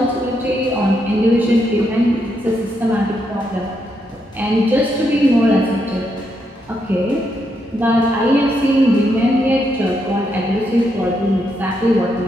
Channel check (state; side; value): normal; both; correlation 0.79